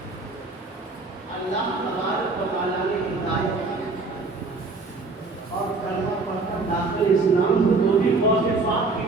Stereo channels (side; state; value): left; quieter; 3.7 dB